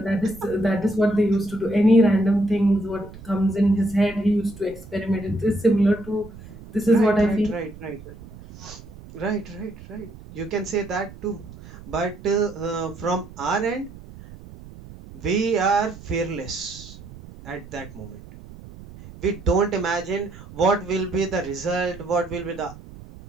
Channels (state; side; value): noise; right; rumble, 17 dB below the sound